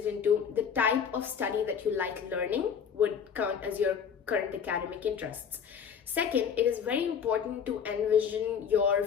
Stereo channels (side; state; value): right; quieter; 7.2 dB